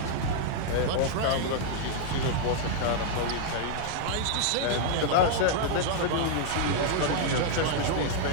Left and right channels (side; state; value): both; different; correlation -0.01